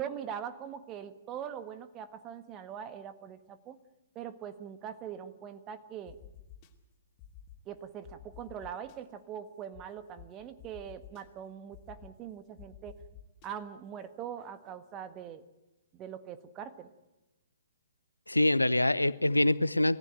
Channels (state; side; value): inverted; both; correlation -0.82